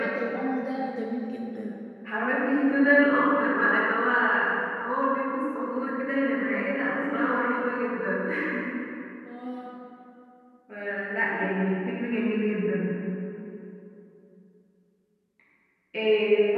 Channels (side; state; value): both; identical; correlation 1.00